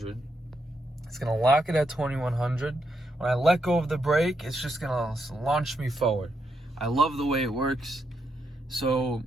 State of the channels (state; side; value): normal; both; correlation 0.81